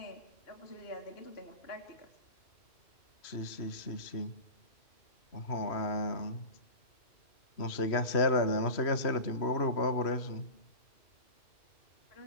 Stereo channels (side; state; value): right; late; 3.0 ms